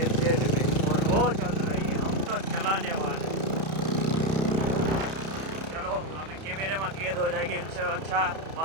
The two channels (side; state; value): left; late; 31 ms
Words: एफजेड में और वो चल रही है, हम तो चलाने वाले. चलो अभी कैमरे में कैद हो जाएगी, इनसे अच्छा